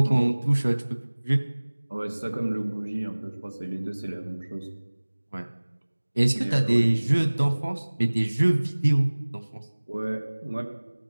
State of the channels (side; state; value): both; inverted; correlation -1.00